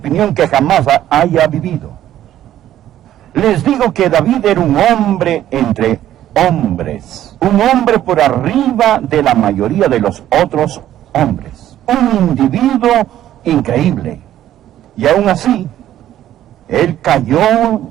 que jamás haya vivido. Les digo que David era un hombre entre hombres, un hombre por arriba de la mayoría de los otros hombres, un individuo increíble. Y aún así, él cayó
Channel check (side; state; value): left; quieter; 12.2 dB